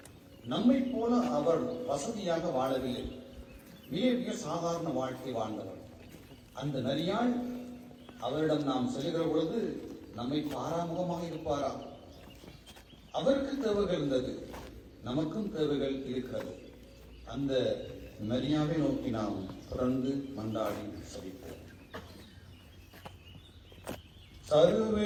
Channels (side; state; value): both; identical; correlation 1.00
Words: நம்மை போல அவர் வசதியாக வாழவில்லை. மிக மிக சாதாரண வாழ்க்கை வாழ்ந்தவர். அந்த மரியாள் அவரிடம் நாம் செல்கிற பொழுது நம்மை பாராமுகமாக இருப்பாரா? அவருக்கு தேவைகள் இருந்தது, நமக்கும் தேவைகள் இருக்கிறது. அந்த மரியாவை நோக்கி நாம் தொடர்ந்து மன்றாடி செபிப்போம்.